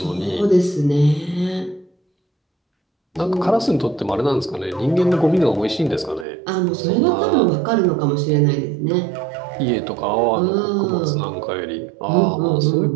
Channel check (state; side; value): drops out; left; at 6.2 s